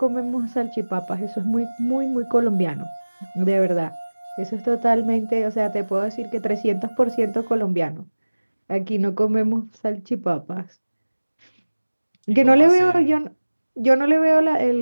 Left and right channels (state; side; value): inverted; both; correlation -1.00